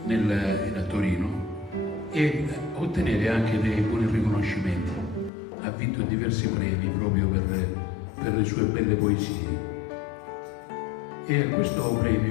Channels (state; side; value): drops out; right; at 5.3 s